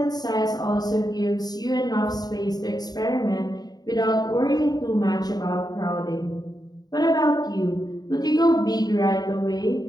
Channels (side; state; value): right; late; 0.19 ms